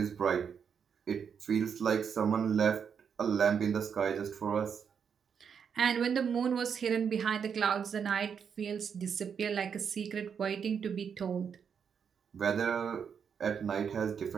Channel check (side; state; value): left; quieter; 7.0 dB